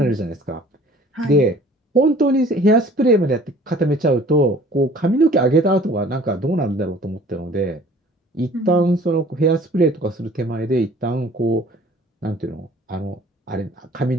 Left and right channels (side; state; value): both; normal; correlation 0.50